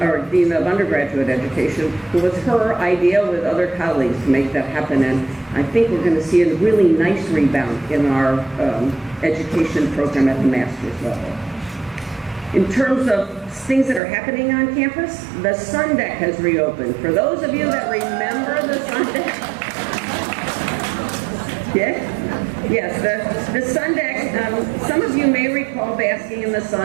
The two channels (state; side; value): drops out; left; at 14.0 s